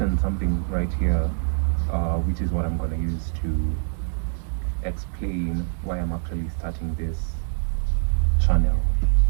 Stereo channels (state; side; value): silent; left; 62 dB below the other